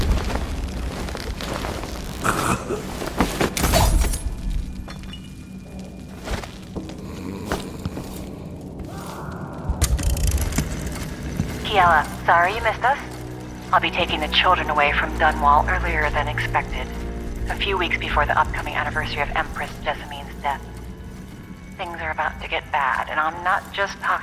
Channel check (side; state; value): both; identical; correlation 1.00